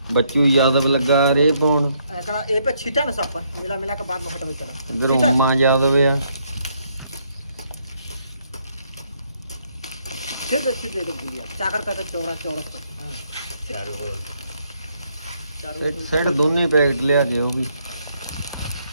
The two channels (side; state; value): both; inverted; correlation -0.72